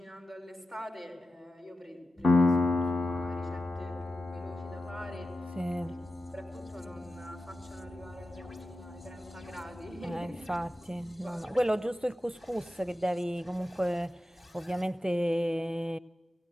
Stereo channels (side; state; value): both; normal; correlation 0.92